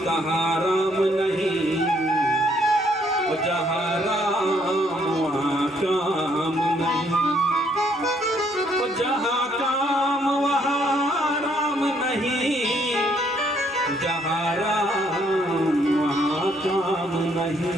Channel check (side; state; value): both; normal; correlation 0.68